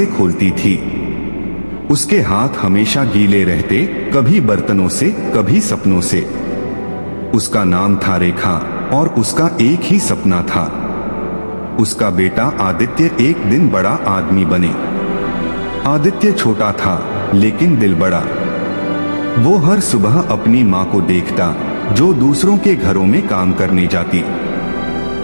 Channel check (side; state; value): both; inverted; correlation -1.00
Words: खोलती थी। उसके हाथ हमेशा गीले रहते, कभी बर्तनों से, कभी सपनों से। उसका नाम था रेखा और उसका एक ही सपना था, उसका बेटा आदित्य एक दिन बड़ा आदमी बने। आदित्य छोटा था लेकिन दिल बड़ा। वो हर सुबह अपनी माँ को देखता जो दूसरों के घरों में काम करने जाती,